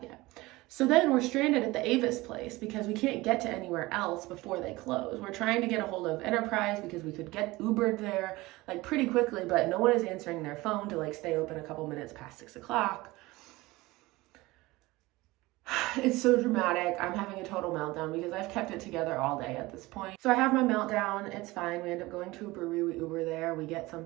yet? So then we're stranded at the Avis place because we can't get to anywhere else before they close. We're trying to get a hold of Enterprise because we could get Ubered there like pretty quickly, but no one is answering their phone to like stay open a couple minutes past 6 o'clock. It's so dramatic. I'm having a total meltdown because I've kept it together all day at this point. So I have my meltdown. It's fine. We end up going to a brewery. We Uber there. We get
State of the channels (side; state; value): left; quieter; 20.4 dB